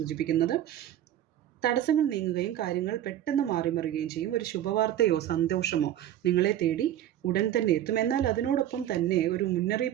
തടസ്സങ്ങൾ നീങ്ങുകയും കാര്യങ്ങൾ പെട്ടെന്ന് മാറിമറിയുകയും ചെയ്യും. ഒരു ശുഭവാർത്തയോ സന്തോഷമോ നിങ്ങളെ തേടി ഉടൻ തന്നെ എത്തും. എന്നാൽ അതിനോടൊപ്പം തന്നെ ഒരു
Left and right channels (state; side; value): quieter; left; 11.8 dB